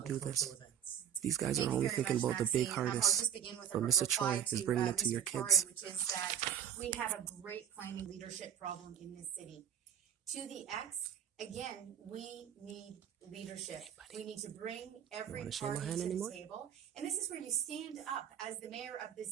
on do cultural this. events? These guys Thank are you only very thinking much, about the big Maxine. I'll artists, just begin with a but Mr. reply Troy is to, bringing it to Mr. your Torre, kids. which is that we have a great planning leadership problem in this city. To the X, again, we need leadership. We need to bring every party to the table. And this is where you stand up as the mayor of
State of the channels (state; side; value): quieter; left; 9.5 dB